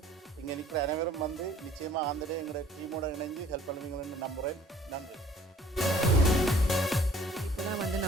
இங்கே நிற்கிற அனைவரும் வந்து நிச்சயமாக ஆந்தடே எங்களோட டீமோட இணைஞ்சு ஹெல்ப் பண்ணுவீங்கன்னு நம்புகிறேன். நன்றி. இப்போதான் வந்து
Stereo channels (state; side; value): normal; both; correlation 0.56